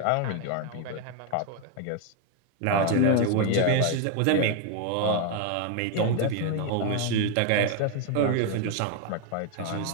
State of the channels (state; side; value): different; both; correlation 0.01